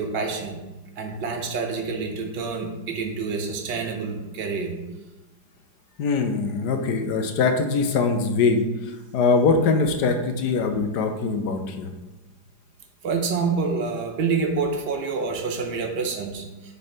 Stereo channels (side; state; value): right; late; 4.9 ms